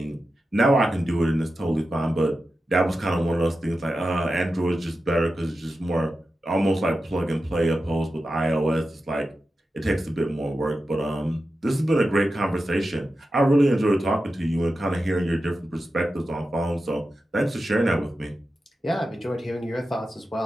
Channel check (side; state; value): both; normal; correlation 0.91